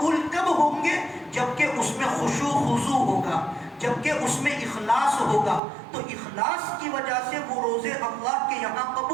کب ہوں گے؟ جبکہ اس میں خشوع خضوع ہوگا، جبکہ اس میں اخلاص ہوگا، تو اخلاص کی وجہ سے وہ روزے اللہ کے یہاں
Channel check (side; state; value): left; drops out; at 5.6 s